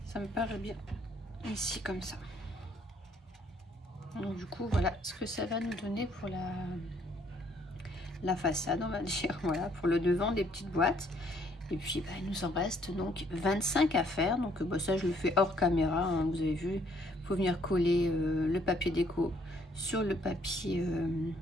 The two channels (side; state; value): both; normal; correlation 0.66